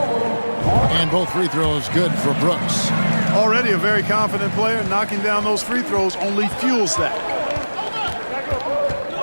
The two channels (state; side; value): inverted; both; correlation -1.00